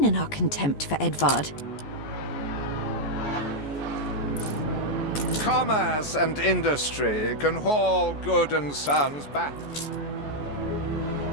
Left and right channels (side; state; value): right; late; 14 ms